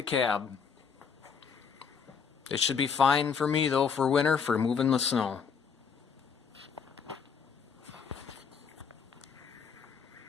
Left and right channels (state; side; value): quieter; right; 6.3 dB